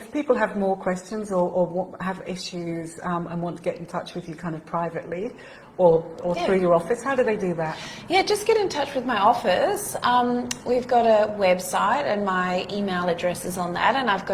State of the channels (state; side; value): identical; both; correlation 1.00